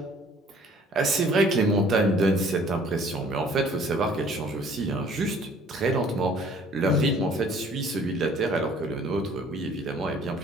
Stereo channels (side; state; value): both; normal; correlation 0.55